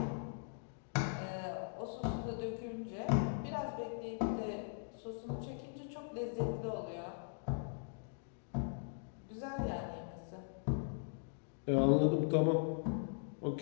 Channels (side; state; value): right; silent; digital silence